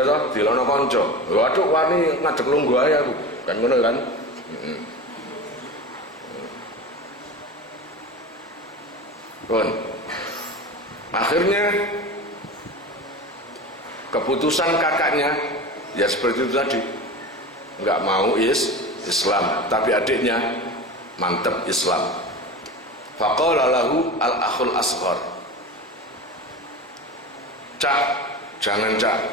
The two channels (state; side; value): normal; both; correlation 0.30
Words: toh, dilokno konco. Waduh wani ngadeg lungguh ae aku. Kan ngono kan? Kon. Akhirnya keputusan kakaknya ya seperti itu tadi. Enggak mau Islam, tapi adiknya mantep Islam. Faqala lahu al-akhul asghar. Cak, jangan Cak,